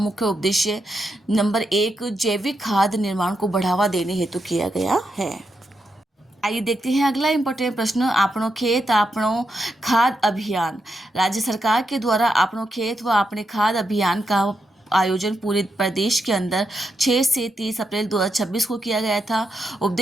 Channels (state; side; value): normal; both; correlation 0.83